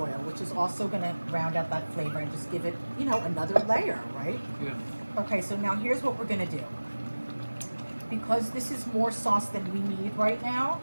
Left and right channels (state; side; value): inverted; both; correlation -1.00